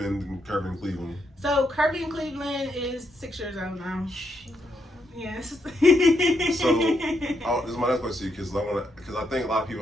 in Curvy In Cleveland? So Curvy In Cleveland is 6 years old now. Yes. So this is my next question to you, because I think a lot of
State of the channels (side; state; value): both; normal; correlation 0.79